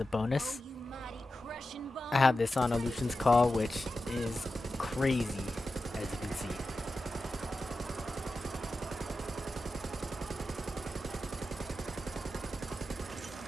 bonus. I have this on Illusion's Call, which is crazy, as you can see.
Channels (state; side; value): normal; both; correlation 0.92